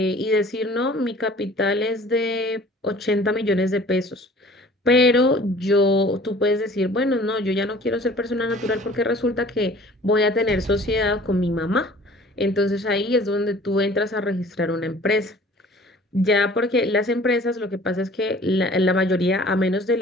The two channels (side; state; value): both; normal; correlation 0.49